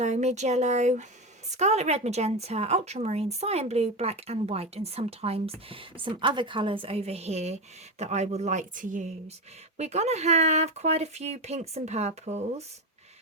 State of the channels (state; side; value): normal; both; correlation 0.17